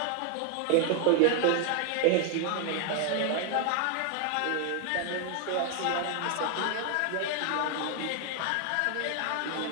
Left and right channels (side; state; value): both; different; correlation 0.00